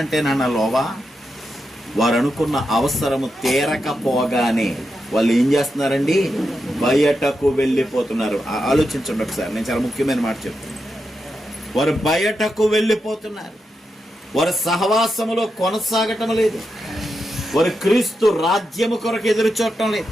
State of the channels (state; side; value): normal; both; correlation 0.87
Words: లోవా వారు అనుకున్న అవసరము తీరకపోగానే వాళ్ళు ఏం చేస్తున్నారండి? బయటకు వెళ్ళిపోతున్నారు. ఆలోచించండి ఒకసారి, నేను చాలా ముఖ్యమైన మాట చెప్తాను. వారు బయటకు వెళ్ళిపోతున్నారు. వారి సహవాసములో కొనసాగటం లేదు. వారు క్రీస్తు రాజ్యము కొరకు ఎదురు చూడటం లేదు.